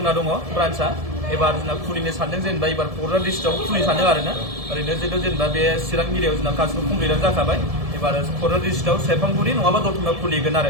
दङ ब्रान्चआ एबार जोंना खुलिनो सानदों जेनेबा एबार क'क्राझार डिस्ट्रिक्टआव खुलिनो सानदों आरोना ओरैनो जेनेबा बे चिरां एरियायाव जोंना गासिबो कमप्लिटआनो जाखाबाय एबार क'क्राझार डिस्ट्रिक्टआव सेरफांगुरि नङाबा दतमायाव खुलिगोन आरो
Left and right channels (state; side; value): late; left; 1.7 ms